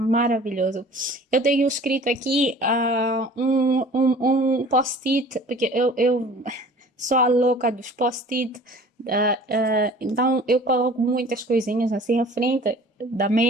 Eu tenho escrito aqui um post-it, porque eu sou a louca dos post-it. Então eu coloco muitas coisinhas assim à frente da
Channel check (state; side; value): normal; both; correlation 0.47